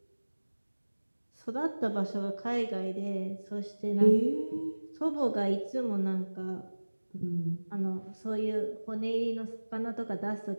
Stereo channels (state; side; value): inverted; both; correlation -1.00